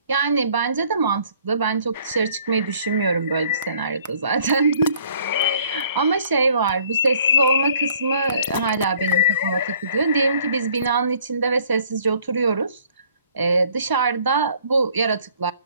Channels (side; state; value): both; inverted; correlation -0.59